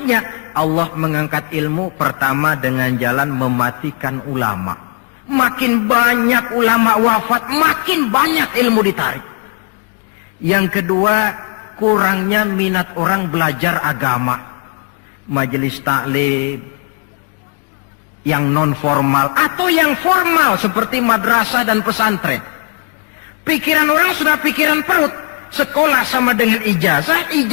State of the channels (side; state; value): right; quieter; 35.1 dB